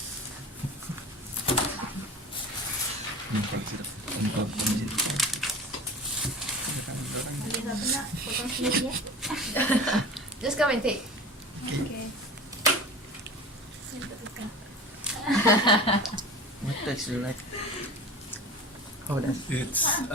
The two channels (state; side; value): normal; both; correlation 0.35